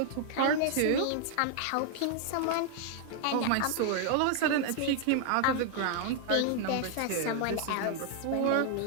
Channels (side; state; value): both; different; correlation 0.00